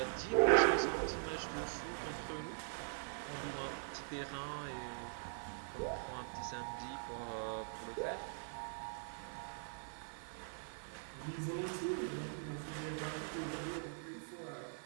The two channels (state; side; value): silent; left; digital silence